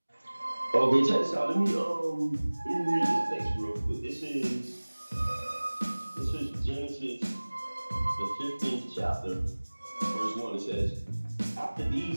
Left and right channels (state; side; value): inverted; both; correlation -1.00